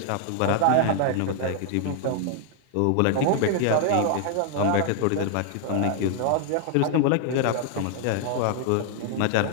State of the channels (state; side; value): different; both; correlation 0.00